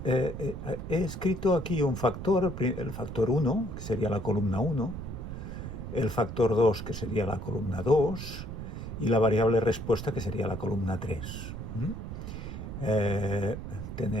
he escrito aquí un factor, el factor 1, que sería la columna 1, el factor 2, que sería la columna 2, y la variable respuesta, que sería la columna 3.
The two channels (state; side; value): noise; right; rumble, 7 dB below the sound